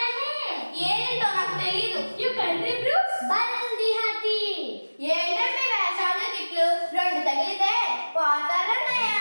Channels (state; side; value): inverted; both; correlation -1.00